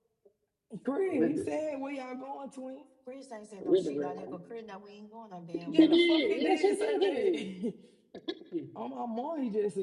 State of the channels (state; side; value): identical; both; correlation 1.00